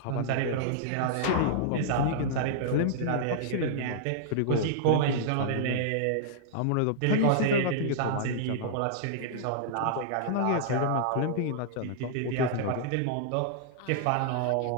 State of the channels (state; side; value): different; both; correlation -0.01